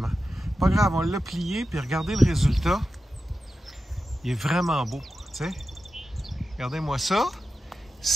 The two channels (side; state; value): both; normal; correlation 0.92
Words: Pas grave, on l'a plié, puis regardez le résultat. Il est vraiment beau, tu sais. Regardez-moi ça.